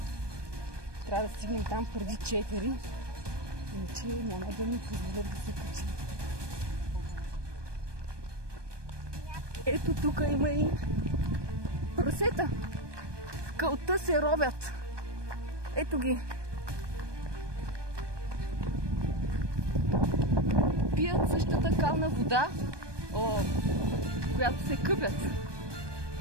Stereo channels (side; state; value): left; late; 1.2 ms